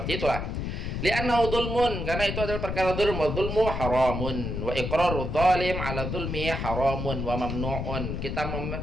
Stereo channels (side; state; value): left; noise; rumble, 3 dB below the sound